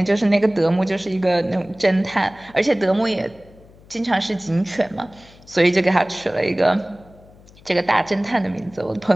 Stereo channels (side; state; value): left; noise; hum, 25 dB below the sound